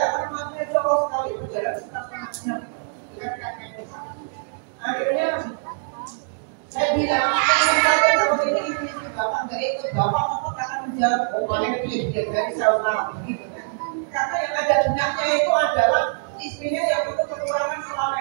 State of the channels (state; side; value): silent; left; digital silence